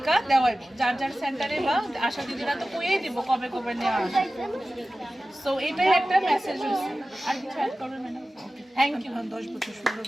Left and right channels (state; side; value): normal; both; correlation 0.96